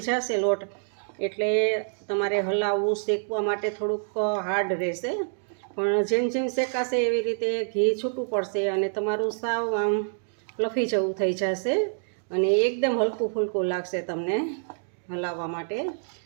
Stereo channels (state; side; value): silent; left; digital silence